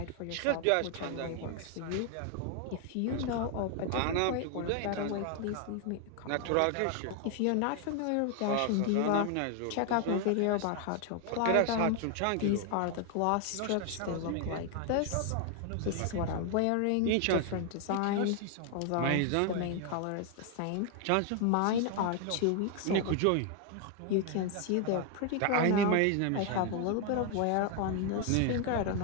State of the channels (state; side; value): different; both; correlation 0.00